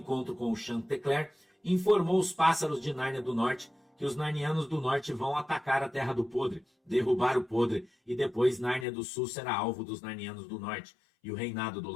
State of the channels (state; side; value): drops out; right; at 8.8 s